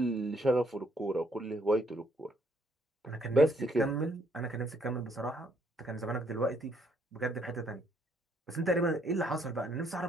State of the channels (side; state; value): both; normal; correlation 0.69